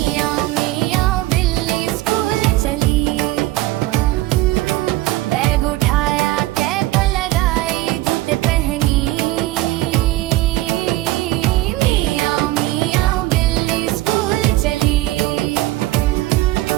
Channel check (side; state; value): left; quieter; 17.3 dB